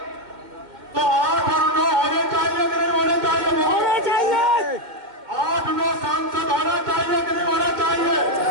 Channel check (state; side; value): late; left; 2.1 ms